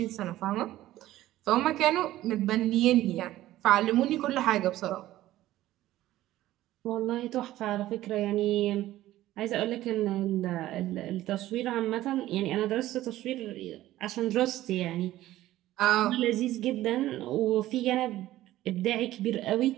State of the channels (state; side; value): quieter; left; 14.9 dB